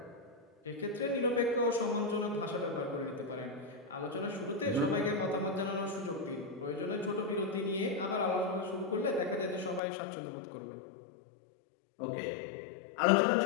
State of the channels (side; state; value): right; drops out; at 9.8 s